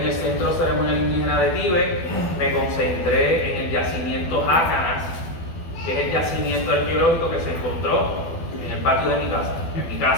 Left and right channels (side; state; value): right; late; 12 ms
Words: el Centro Ceremonial Indígena de Tíbet, me concentré en el yacimiento Jácanas, que es el yacimiento arqueológico que se encontró en el patio de mi